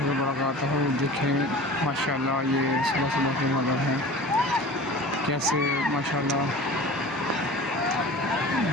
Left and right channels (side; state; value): both; normal; correlation 0.38